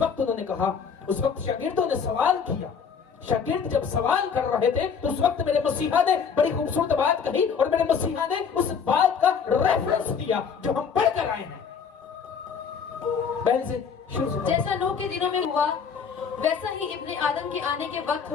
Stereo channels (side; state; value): right; quieter; 6.5 dB